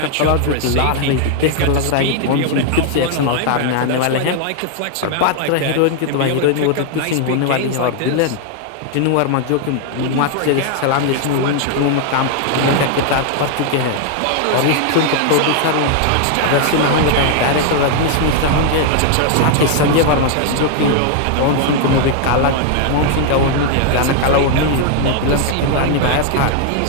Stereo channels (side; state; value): both; different; correlation 0.00